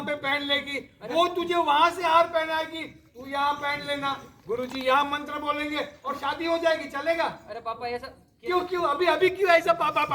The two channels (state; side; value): identical; both; correlation 1.00